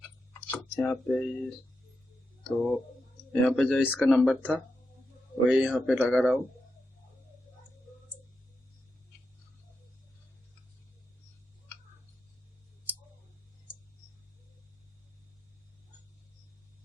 यहाँ पे जो इसका नंबर था वही यहाँ पे लगा रहा हूँ।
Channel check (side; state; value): both; normal; correlation 0.87